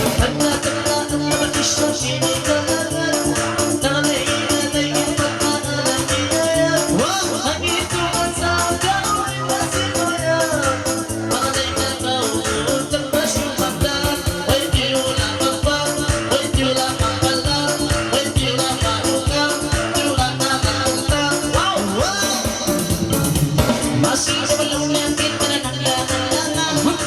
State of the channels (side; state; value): both; identical; correlation 1.00